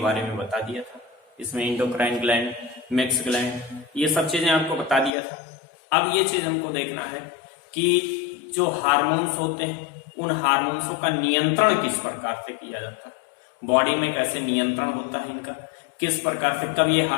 में बता दिया था। इसमें इंडोक्राइन ग्लैंड, मैक्स ग्लैंड, ये सब चीजें आपको बता दिया था। अब ये चीज हमको देखना है कि जो हार्मोन्स होते हैं उन हार्मोन्सों का नियंत्रण किस प्रकार से किया जाता है, बॉडी में कैसे नियंत्रण होता है इनका, किस प्रकार से, कब ये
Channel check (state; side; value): drops out; right; at 5.1 s